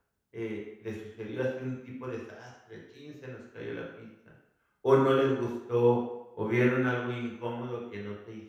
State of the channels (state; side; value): identical; both; correlation 1.00